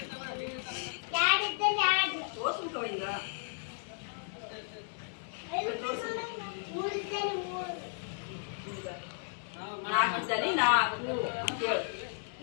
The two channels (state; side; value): silent; right; digital silence